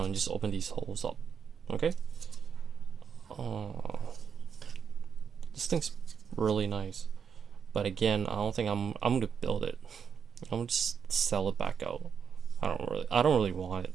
and just open these holes up. Okay? This thing's really nice. But again, I don't think I'm gonna build it. I'm gonna just sell it back out. I don't really want it.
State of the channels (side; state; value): left; quieter; 7.0 dB